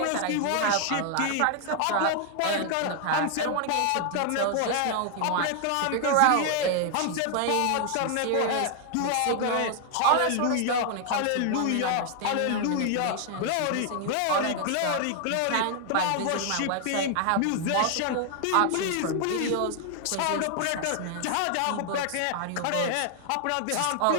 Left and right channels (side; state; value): both; different; correlation 0.00